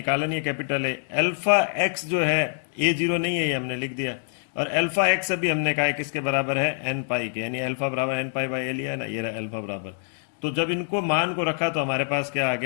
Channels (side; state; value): right; silent; digital silence